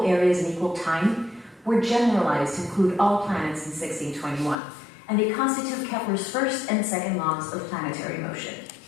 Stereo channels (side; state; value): right; drops out; at 4.5 s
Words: areas in equal time, were generalized to include all planets in 1621, and they constitute Kepler's first and second laws of planetary motion.